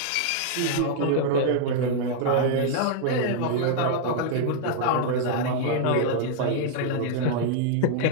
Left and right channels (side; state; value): both; different; correlation -0.01